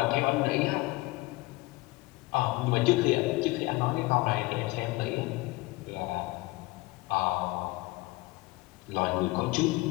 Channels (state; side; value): quieter; right; 21.9 dB